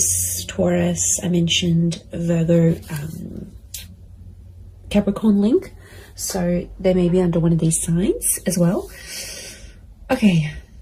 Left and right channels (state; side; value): identical; both; correlation 1.00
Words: Taurus, I mentioned Virgo, Capricorn link, so they may be under one of these signs as well. Okay,